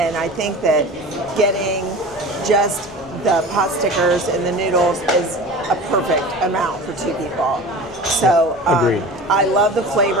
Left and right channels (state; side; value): normal; both; correlation 0.36